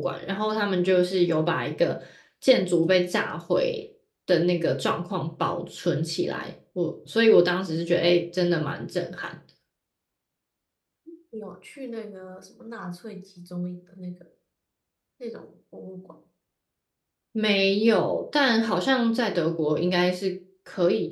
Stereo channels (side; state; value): both; identical; correlation 1.00